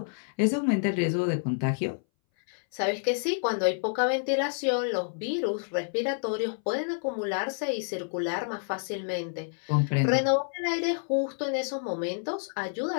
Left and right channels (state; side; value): silent; right; 59 dB below the other